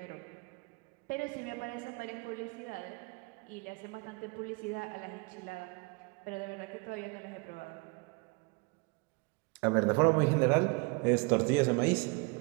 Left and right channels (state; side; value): quieter; left; 30.0 dB